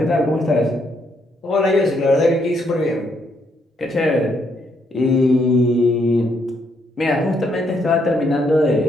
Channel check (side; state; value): both; normal; correlation 0.74